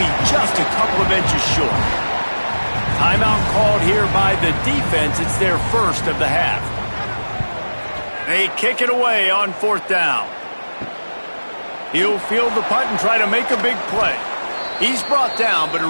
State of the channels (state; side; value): inverted; both; correlation -1.00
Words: just a couple of inches short. Timeout called here by the defense. It's their first of the half. They kick it away on fourth down. He'll field the punt and try to make a big play. He's brought down, but a